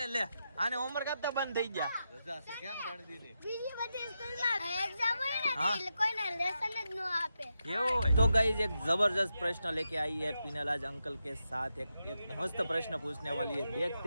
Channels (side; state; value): both; inverted; correlation -0.87